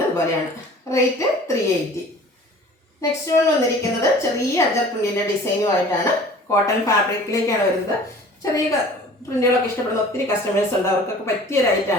പോലെയാണ്. റേറ്റ് 380. നെക്സ്റ്റ് വൺ വന്നിരിക്കുന്നത് ചെറിയ അജക് പ്രിന്റിൻ്റെ ഡിസൈനുമായിട്ടാണ്. കോട്ടൺ ഫാബ്രിക്കിലേക്കാണ് വരുന്നത്. ചെറിയ പ്രിന്റുകളൊക്കെ ഇഷ്ടപ്പെടുന്ന ഒത്തിരി കസ്റ്റമേഴ്സ് ഉണ്ട്. അവർക്കൊക്കെ പറ്റിയ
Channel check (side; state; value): both; normal; correlation 0.47